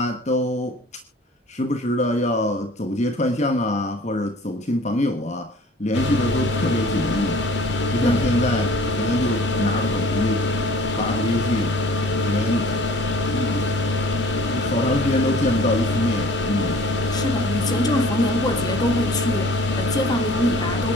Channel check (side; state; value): both; normal; correlation 0.49